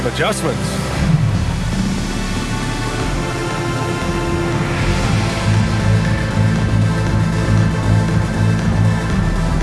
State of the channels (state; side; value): identical; both; correlation 1.00